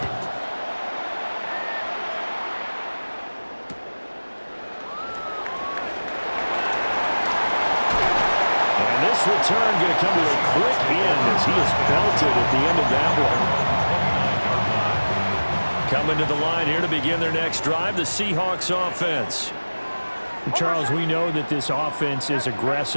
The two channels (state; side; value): inverted; both; correlation -1.00